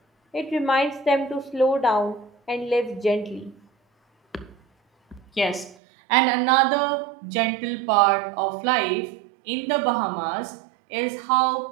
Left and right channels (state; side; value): drops out; left; at 5.8 s